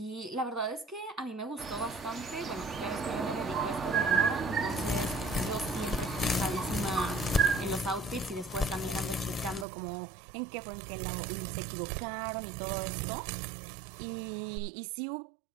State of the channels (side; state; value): left; drops out; at 9.7 s